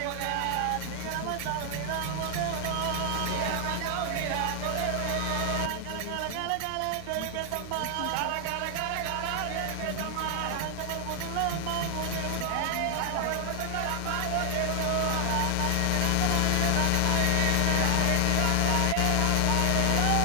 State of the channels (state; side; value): different; both; correlation 0.00